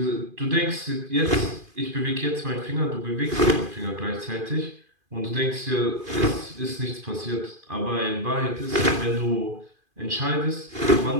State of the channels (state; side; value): late; left; 2.5 ms